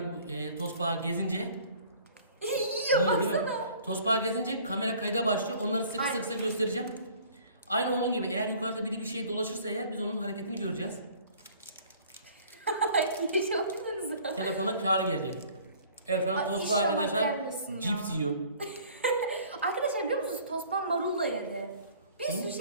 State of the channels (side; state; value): both; inverted; correlation -0.52